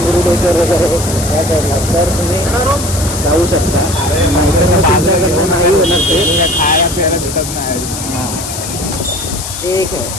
वगैरे या साईडला, तर तुम्ही जाऊ शकता. नाहीतर मग तुमच्याकडनं नाही होणार ते. खायला प्यायला भेटत नाही. हां ठीक आहे.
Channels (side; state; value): left; noise; hiss, 7 dB below the sound